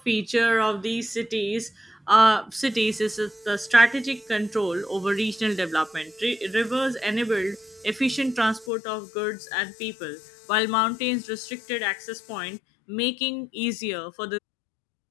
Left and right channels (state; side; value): drops out; right; at 8.7 s